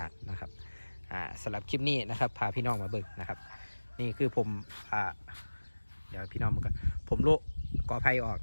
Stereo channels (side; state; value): both; inverted; correlation -1.00